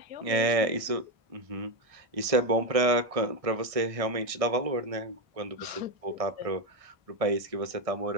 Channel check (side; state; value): left; late; 1.6 ms